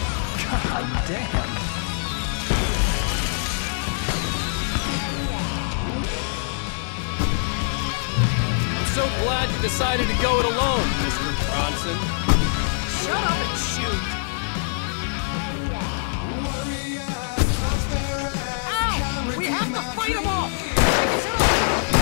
God damn! I'm so glad you decided to go it alone, Mr. Bronson. Shut up and shoot! Ow! We have to fight them off!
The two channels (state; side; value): silent; right; 63 dB below the other